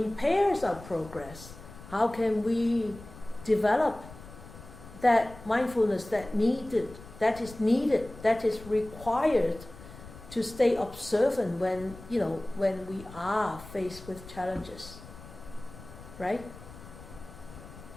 our progress, how can we develop that mindfulness that is required to stay observant when we are faced with challenges, right?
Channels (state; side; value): noise; left; rumble, 17 dB below the sound